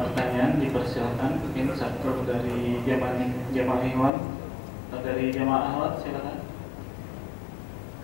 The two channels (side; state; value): right; drops out; at 4.1 s